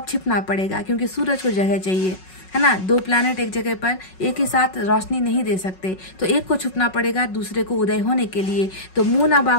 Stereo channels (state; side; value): late; right; 5.4 ms